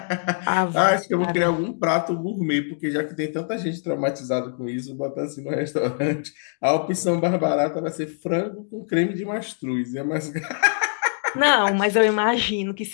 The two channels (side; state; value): right; silent; 63 dB below the other